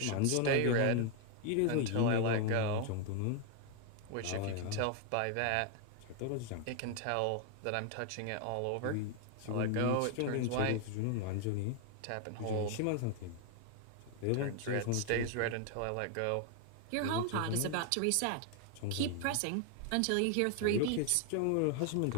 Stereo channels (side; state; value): both; different; correlation 0.00